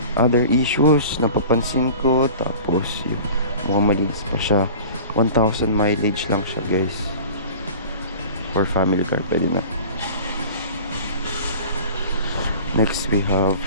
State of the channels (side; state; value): both; inverted; correlation -0.40